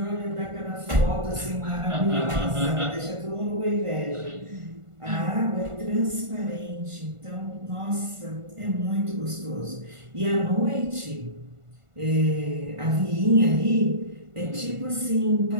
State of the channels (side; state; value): left; late; 1.5 ms